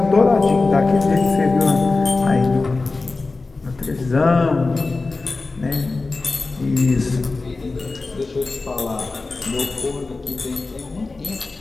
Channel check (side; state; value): right; quieter; 3.6 dB